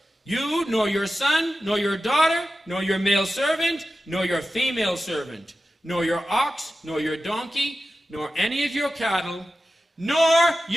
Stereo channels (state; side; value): normal; both; correlation 0.93